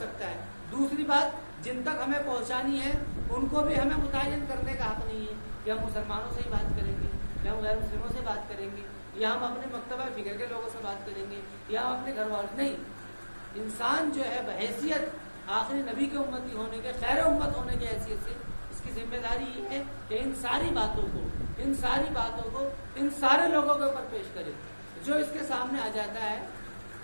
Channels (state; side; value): inverted; both; correlation -1.00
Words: ہے۔ دوسری بات، جن تک ہمیں پہنچانی ہے ان کو بھی ہمیں متعین کرنے کا حق نہیں ہے کہ ہم مسلمانوں سے ہی بات کریں گے یا ہم غیر مسلموں سے بات کریں گے یا ہم اپنے مکتبہ فکر کے لوگوں سے بات کریں گے یا ہم اپنے گھر والوں، نہیں۔ انسان جو ہے بحیثیت آخری نبی کے امتی ہونے کے، خیر امت ہونے کی حیثیت سے اس کی ذمہ داری یہ ہے کہ ان ساری باتوں کو ان سارے لوگوں کے اوپر پیش کرے۔ جو اس کے سامنے آ جاتا